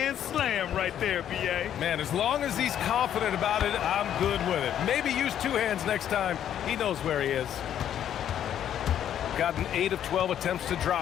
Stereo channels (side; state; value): right; quieter; 10.2 dB